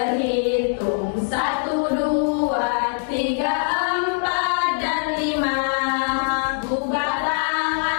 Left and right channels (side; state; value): right; silent; 56 dB below the other